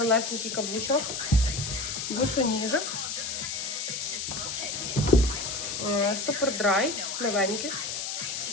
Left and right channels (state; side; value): noise; left; hiss, 4 dB below the sound